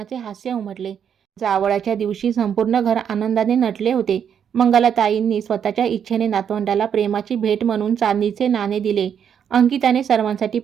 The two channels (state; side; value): quieter; left; 8.2 dB